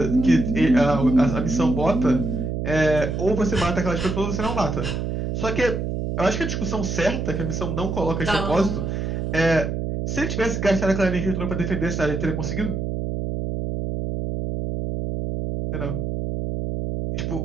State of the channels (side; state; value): right; noise; hum, 2 dB below the sound